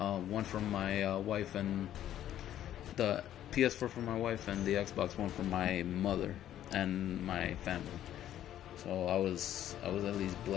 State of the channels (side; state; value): right; quieter; 11.7 dB